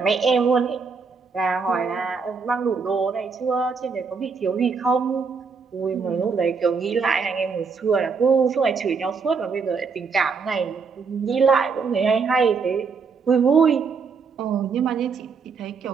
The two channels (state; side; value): quieter; left; 5.2 dB